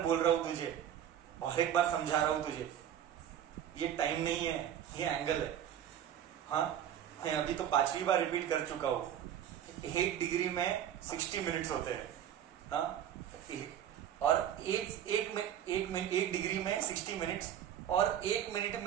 बोल रहा हूं तुझे, और एक बार समझा रहा हूं तुझे, ये टाइम नहीं है, ये एंगल है। हाँ, मैं अभी तो 5वीं बार रिपीट कर चुका हूं। 1 डिग्री में 60 मिनट्स होते हैं। हाँ, और एक डिग्री में 60 मिनट्स, और 1 मिनट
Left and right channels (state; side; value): quieter; left; 10.2 dB